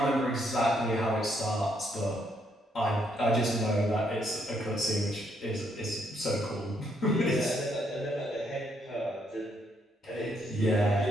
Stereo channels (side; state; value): both; normal; correlation 0.74